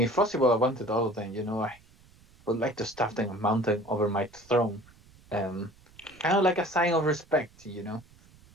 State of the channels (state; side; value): noise; right; rumble, 27 dB below the sound